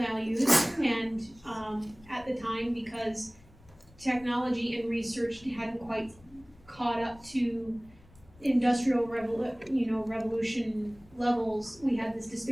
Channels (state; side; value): noise; left; rumble, 26 dB below the sound